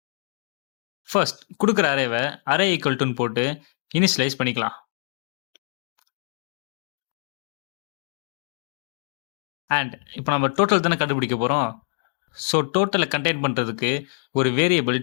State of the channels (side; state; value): right; silent; digital silence